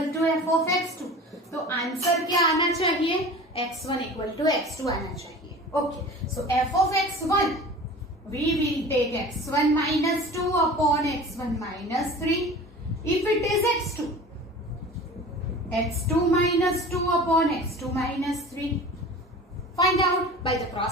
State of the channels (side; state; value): both; normal; correlation 0.38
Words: to f of x2. तो answer क्या आना चाहिए? x1 equal to x2 आना चाहिए. Okay, so f of x1, we will take x1 minus 2 upon x1 minus 3. If it is x2, x2 minus 2 upon x2 minus 3. Find out by the